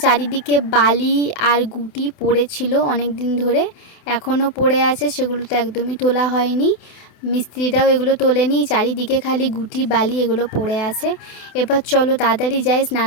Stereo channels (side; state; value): right; late; 28 ms